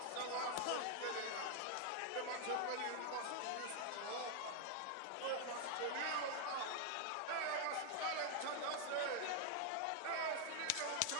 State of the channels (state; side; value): different; both; correlation 0.00